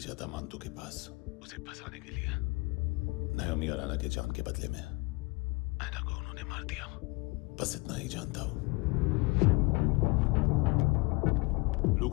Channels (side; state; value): right; quieter; 25.6 dB